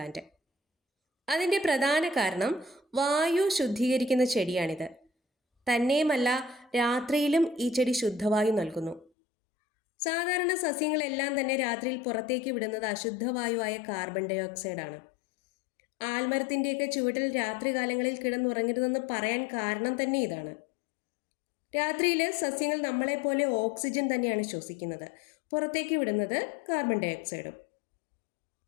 അതിൻ്റെ പ്രധാന കാരണം വായു ശുദ്ധീകരിക്കുന്ന ചെടിയാണിത്. തന്നെയുമല്ല, രാത്രിയിലും ഈ ചെടി ശുദ്ധവായു നൽകുന്നു. സാധാരണ സസ്യങ്ങളെല്ലാം തന്നെ രാത്രിയിൽ പുറത്തേക്ക് വിടുന്നത് അശുദ്ധവായുവായ കാർബൺ ഡൈ ഓക്സൈഡാണ്. ആൽമരത്തിൻ്റെയൊക്കെ ചുവട്ടിൽ രാത്രികാലങ്ങളിൽ കിടന്നുറങ്ങരുതെന്ന് പറയാൻ കാരണം തന്നെ ഇതാണ്. രാത്രിയിൽ സസ്യങ്ങൾ നമ്മളെപ്പോലെ ഓക്സിജൻ തന്നെയാണ് ശ്വസിക്കുന്നത്, പുറത്തേക്ക് വിടുന്നത് കാർബൺ ഡൈ ഓക്സൈഡും.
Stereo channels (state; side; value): drops out; right; at 9.1 s